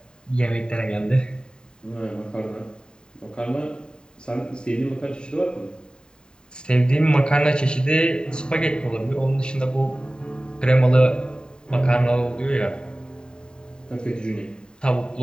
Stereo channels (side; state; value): right; late; 0.048 ms